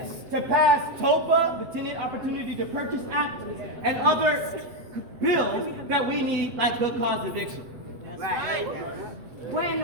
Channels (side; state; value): left; late; 8.0 ms